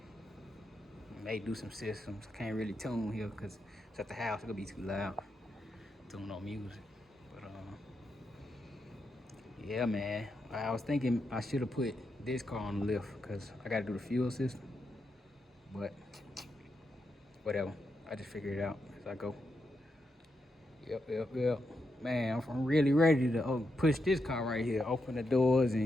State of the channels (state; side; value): normal; both; correlation 0.84